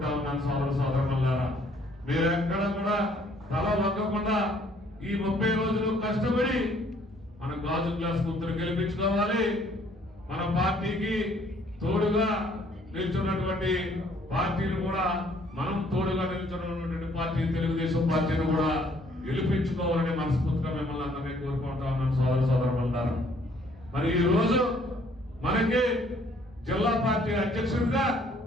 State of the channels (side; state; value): both; normal; correlation 0.62